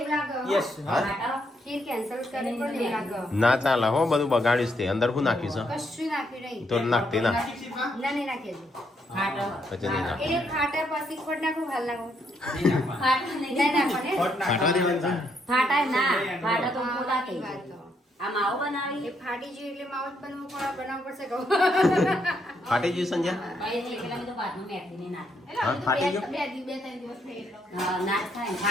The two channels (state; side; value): normal; both; correlation 0.75